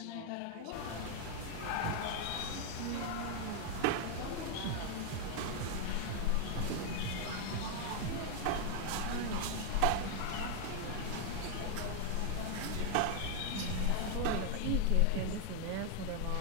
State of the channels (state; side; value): different; both; correlation 0.00